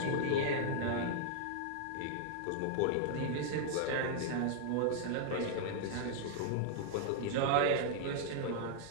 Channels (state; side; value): different; both; correlation -0.01